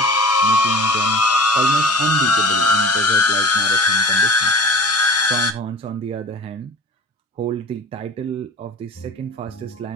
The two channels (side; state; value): both; normal; correlation 0.41